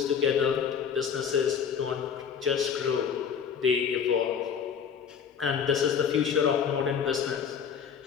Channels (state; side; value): quieter; right; 7.2 dB